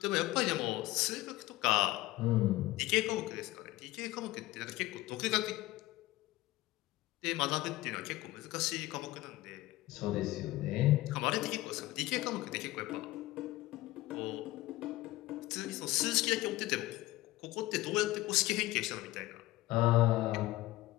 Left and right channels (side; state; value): right; quieter; 18.1 dB